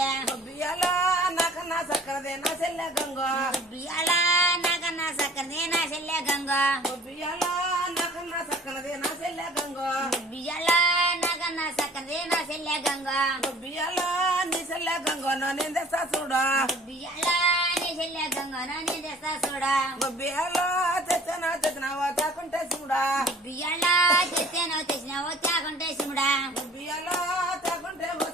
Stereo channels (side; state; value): both; normal; correlation 0.50